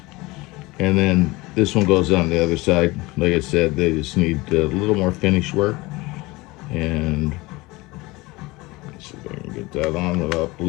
And then this one goes on the other side. Like I said, they just need a little more finish work. And see if I can get that on without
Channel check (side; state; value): right; quieter; 22.0 dB